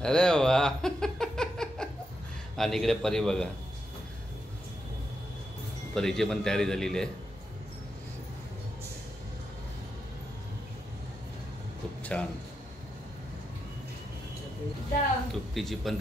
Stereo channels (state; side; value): normal; both; correlation 0.85